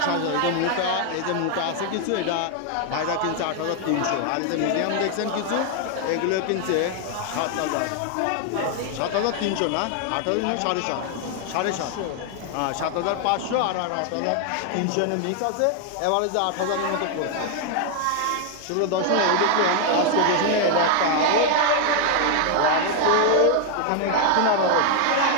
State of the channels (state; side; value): different; both; correlation 0.00